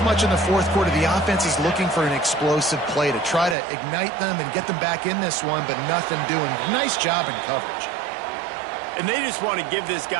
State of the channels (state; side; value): drops out; left; at 3.6 s